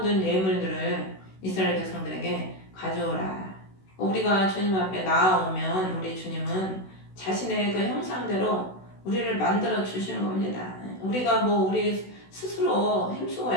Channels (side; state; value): right; late; 16 ms